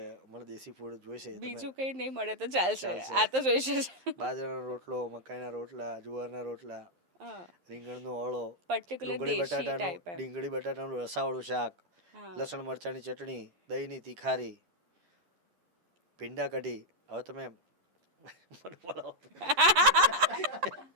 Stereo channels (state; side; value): late; left; 11 ms